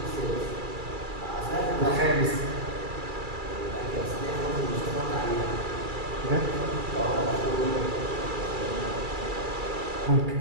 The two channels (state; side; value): late; left; 2.3 ms